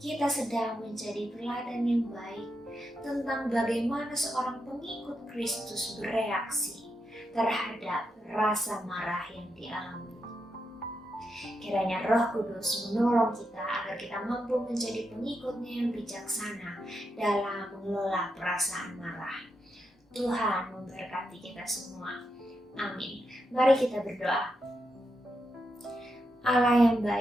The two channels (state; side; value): normal; both; correlation 0.84